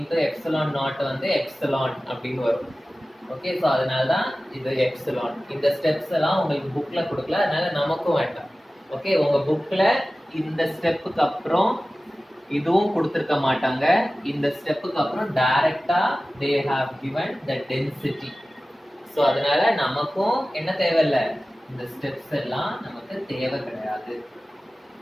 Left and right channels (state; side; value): normal; both; correlation 0.96